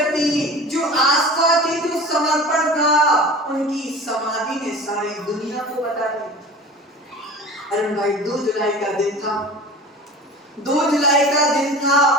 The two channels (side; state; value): both; normal; correlation 0.37